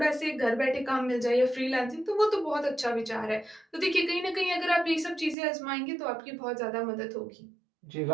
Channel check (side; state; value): left; drops out; at 5.4 s